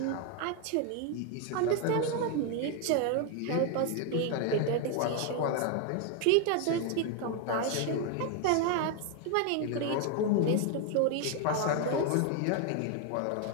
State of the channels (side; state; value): both; different; correlation 0.01